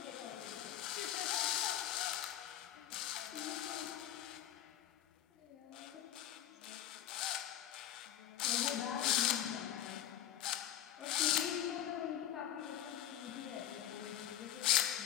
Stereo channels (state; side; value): quieter; right; 11.6 dB